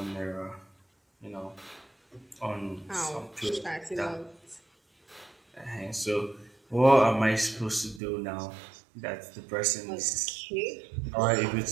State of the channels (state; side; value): drops out; left; at 8.0 s